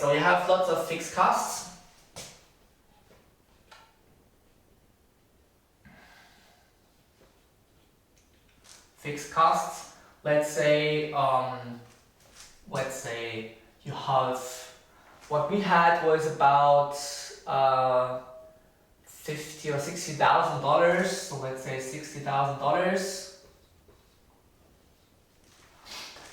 you have lots of fixed costs. Fixed costs. Let's say you have, what we had was about $50,000 or $60,000. So let's say $60,000,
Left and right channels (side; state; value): both; identical; correlation 1.00